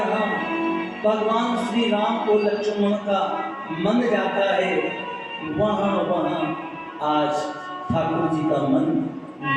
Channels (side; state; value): both; identical; correlation 1.00